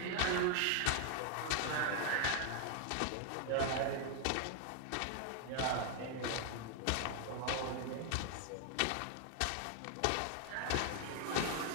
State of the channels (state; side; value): different; both; correlation 0.00